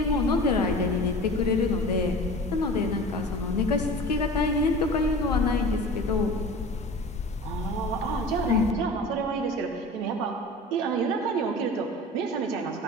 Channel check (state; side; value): normal; both; correlation 0.37